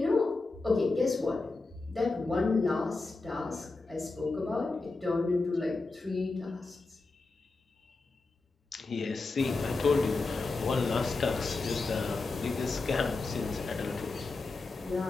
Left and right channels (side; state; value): right; quieter; 3.6 dB